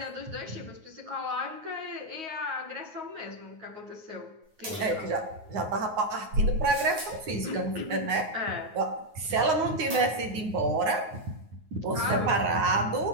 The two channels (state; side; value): late; left; 9.4 ms